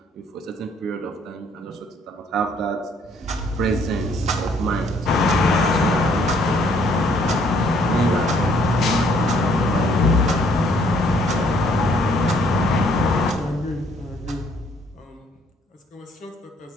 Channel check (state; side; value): normal; both; correlation 0.64